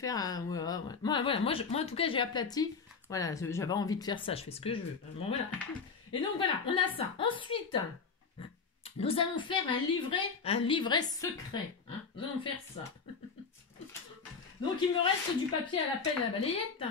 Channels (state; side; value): quieter; right; 5.2 dB